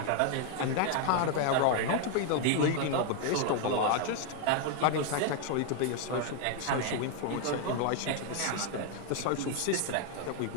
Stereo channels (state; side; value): different; both; correlation 0.01